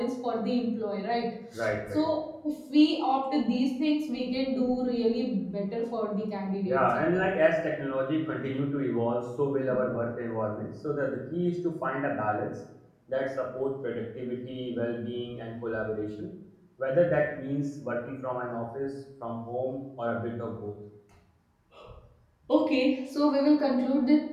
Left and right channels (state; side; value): identical; both; correlation 1.00